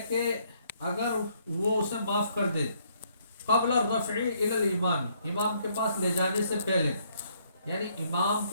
کہ اگر وہ اسے معاف کر دے، قبل الرفع الی الامام، امام کے پاس لے جانے سے پہلے، یعنی امام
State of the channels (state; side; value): inverted; both; correlation -0.68